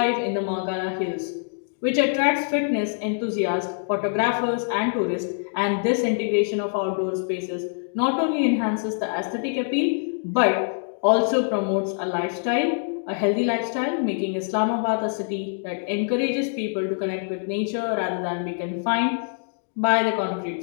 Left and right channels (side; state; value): right; silent; digital silence